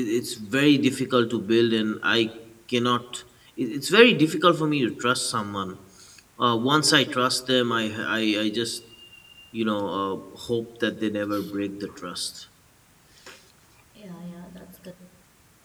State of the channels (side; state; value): both; identical; correlation 1.00